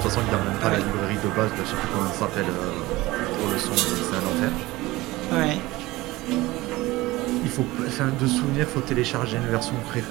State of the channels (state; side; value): quieter; left; 19.5 dB